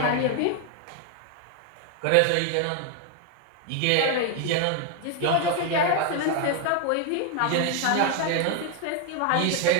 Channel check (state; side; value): different; both; correlation 0.01